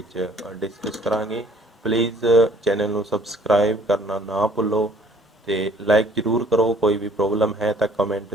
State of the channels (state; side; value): normal; both; correlation 0.57